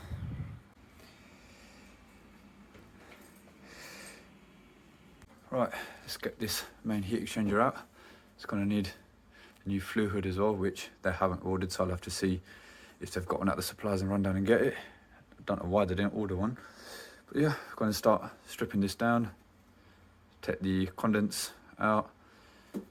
Right, let's get this main heat exchanger out. It's going to need a new flue hood as well, which they haven't ordered, so I'll have to see if they've got one at the suppliers and run down and get it. I don't know why they didn't order one. But yeah, I'm going to start stripping this down, take the condense out,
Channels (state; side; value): identical; both; correlation 1.00